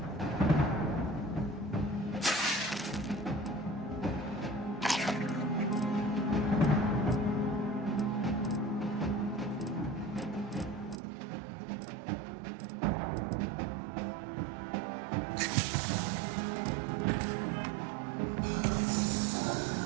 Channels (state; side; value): drops out; left; at 11.0 s